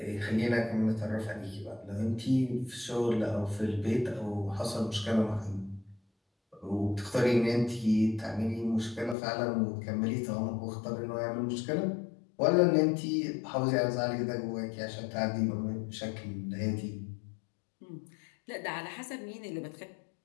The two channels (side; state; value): right; drops out; at 9.2 s